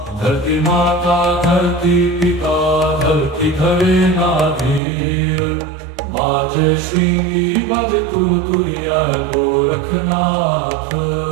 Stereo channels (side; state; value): left; drops out; at 4.8 s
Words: धरती माता धरती पिता धरती धरे नाधीर बाजे श्रृंगी बाजे तुरतुरिया गोरखनाथ